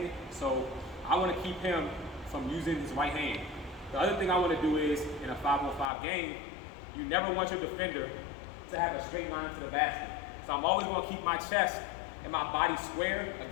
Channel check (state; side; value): drops out; right; at 5.9 s